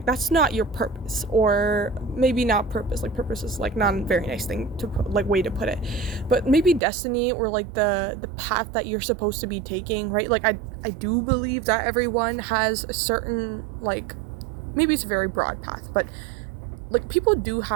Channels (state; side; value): drops out; left; at 6.8 s